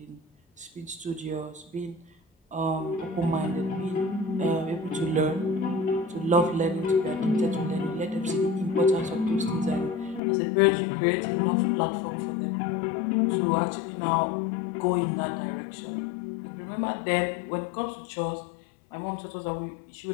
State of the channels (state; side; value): drops out; right; at 10.2 s